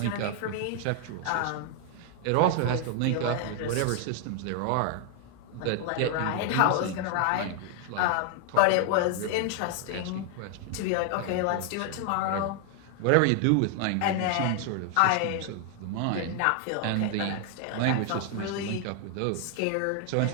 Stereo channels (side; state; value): both; different; correlation 0.00